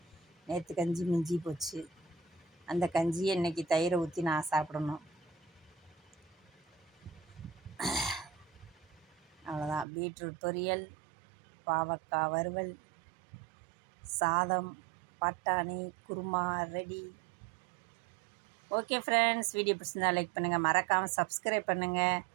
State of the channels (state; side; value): drops out; left; at 9.9 s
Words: நேற்று கஞ்சி மிஞ்சி போச்சு. அந்த கஞ்சியை இன்றைக்கி தயிரை ஊற்றி நான் சாப்பிடணும். அவ்வளோதான். பீட்ரூட் பொரியல், பாவக்காய் வறுவல், சாதம், பட்டாணி, kurma ready. Okay friends, video பிடிச்சிருந்தா லைக் பண்ணுங்கள், மறக்காமல் சப்ஸ்கிரைப் பண்ணுங்கள்.